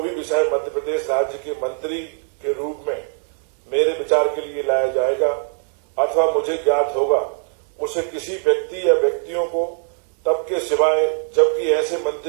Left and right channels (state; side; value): silent; left; 60 dB below the other